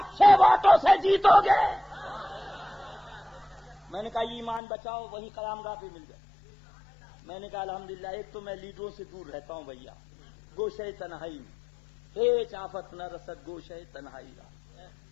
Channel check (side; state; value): right; drops out; at 4.6 s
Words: ووٹوں سے جیتو گے۔ میں نے کہا ایمان بچاؤ، وہی قیام گاہ پہ مل گئے۔ میں نے کہا الحمدللہ ایک تو میں لیڈروں سے دور رہتا ہوں بھیا، گوشے تنہائی میں ہیچ آفت نہ رسد، گوشے تنہائی رہا،